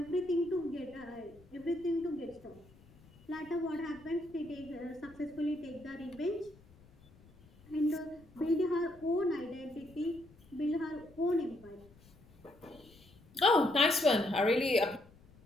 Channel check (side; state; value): left; noise; rumble, 25 dB below the sound